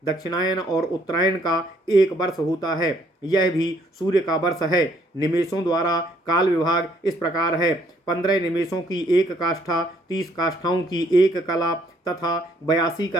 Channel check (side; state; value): both; normal; correlation 0.66